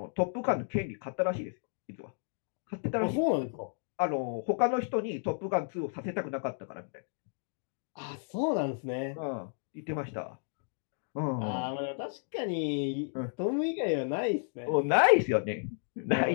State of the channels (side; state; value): right; silent; 56 dB below the other